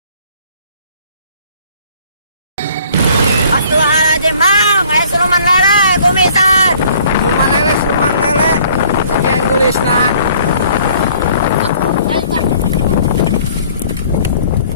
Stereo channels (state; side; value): inverted; both; correlation -0.56